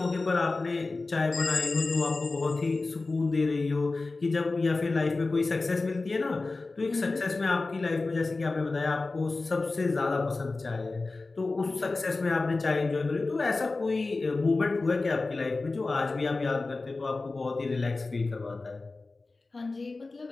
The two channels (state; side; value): quieter; right; 3.5 dB